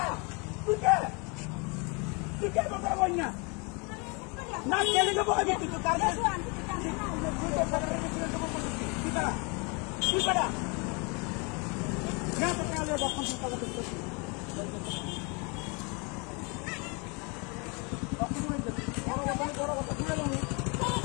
তুই কে কথা বল না না কেলে দেবো আমি তুই তার তুই পারা না তো কালে যখন তুই কথা বলছিস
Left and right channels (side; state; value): right; quieter; 31.3 dB